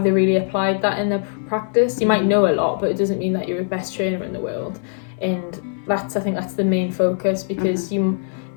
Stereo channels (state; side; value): silent; right; digital silence